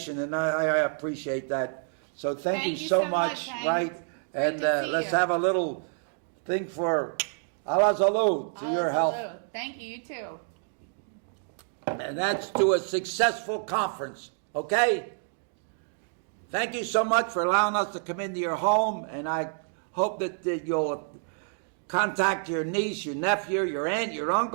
and I appreciate that. So Thank you so much, Hank. right? Great and, to see let's you. have a little thing for Allah Zalou to your health. Hello. Thank you, you too. And that's to a successful conference, okay? Thank you so much for allowing us to come into your home, and I hope that you'll contact your niece, your nephew, your aunt, your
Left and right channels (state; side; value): silent; left; 59 dB below the other